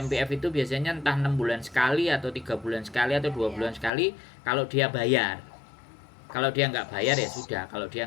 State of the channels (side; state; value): right; drops out; at 3.9 s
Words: itu biasanya entah 6 bulan sekali atau 3 bulan sekali atau 2 bulan sekali kalau dia bayar. Kalau dia nggak bayar ya sudah. Kalau